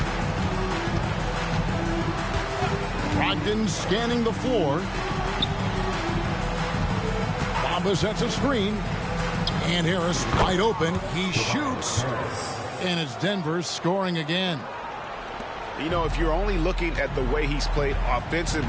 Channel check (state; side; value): identical; both; correlation 1.00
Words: Brogdon scanning the floor. Bamba sets a screen. And Harris wide open. He shoots. And it's Denver scoring again. You know, if you're only looking at the way he's played